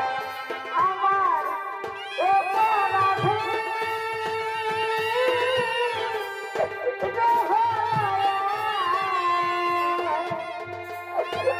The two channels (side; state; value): both; identical; correlation 1.00